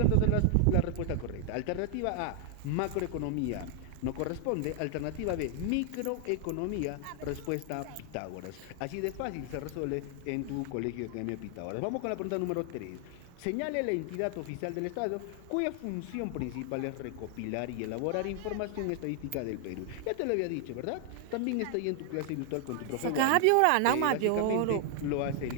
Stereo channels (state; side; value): different; both; correlation 0.00